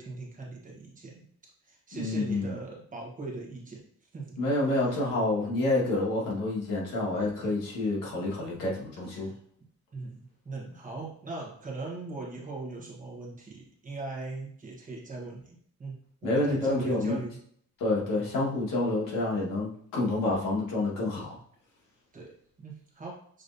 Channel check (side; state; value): both; normal; correlation 0.45